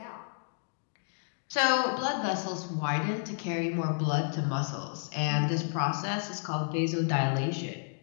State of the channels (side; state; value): right; silent; 57 dB below the other